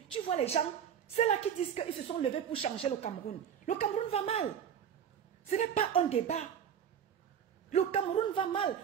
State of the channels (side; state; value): left; quieter; 8.4 dB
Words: tu vois les gens, c'est là qui disent qu'ils se sont levés pour changer le Cameroun. Le Cameroun va mal. Ce n'est pas un débat. Le Cameroun va mal.